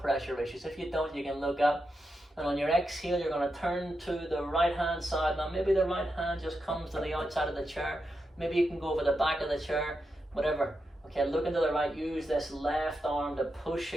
issues. If you don't, you can look up. And on your exhale, you're going to turn to the right hand side. Now maybe the right hand just comes to the outside of the chair. Maybe you can go over the back of the chair, whatever. Okay, look into the right. Use this left arm to push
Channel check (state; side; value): normal; both; correlation 0.86